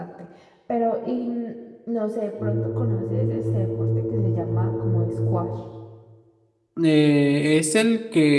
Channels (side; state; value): both; identical; correlation 1.00